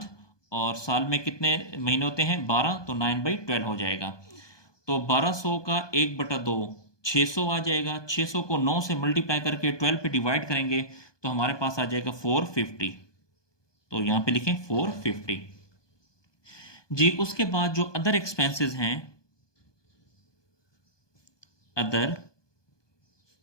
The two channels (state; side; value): late; right; 1.2 ms